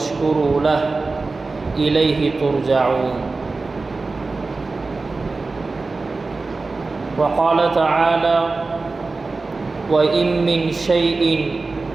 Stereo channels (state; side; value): quieter; left; 3.7 dB